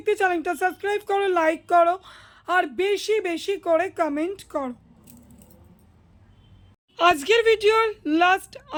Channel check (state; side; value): identical; both; correlation 1.00